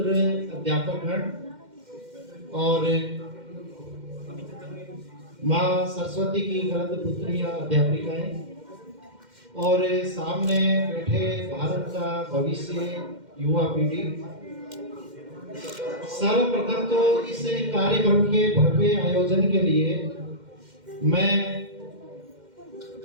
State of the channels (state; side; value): late; left; 2.1 ms